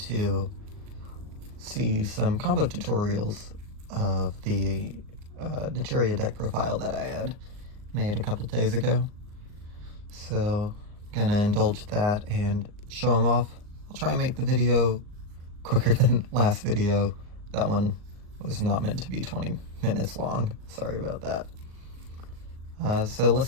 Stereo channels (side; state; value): left; late; 38 ms